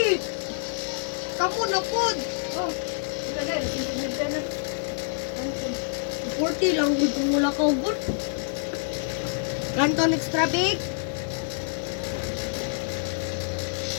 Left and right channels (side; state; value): right; silent; 60 dB below the other